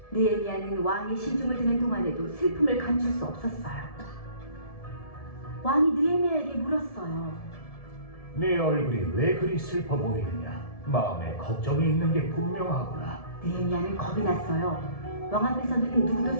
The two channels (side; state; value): right; late; 1.7 ms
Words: 느헤미야는 왕의 시중을 듣는 동안에도 슬픔을 감출 수 없었어요. 왕이 느헤미야에게 물었어요. 네 얼굴이 왜 그리 슬퍼 보이느냐? 마음에 걱정이 있는 게 분명하구나. 느헤미야는 겁이 났어요. 왕 앞에서는 누구도